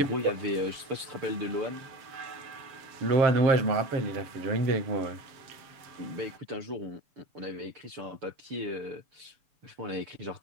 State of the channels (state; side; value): late; left; 6.8 ms